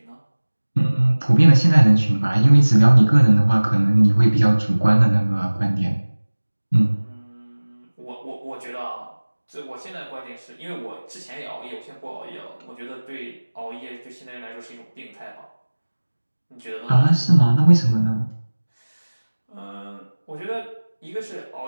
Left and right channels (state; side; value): inverted; both; correlation -1.00